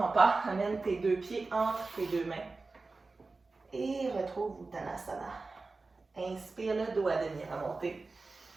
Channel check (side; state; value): left; quieter; 3.7 dB